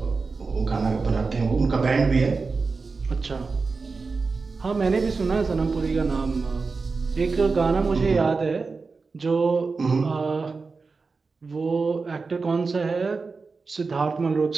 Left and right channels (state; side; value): quieter; left; 4.4 dB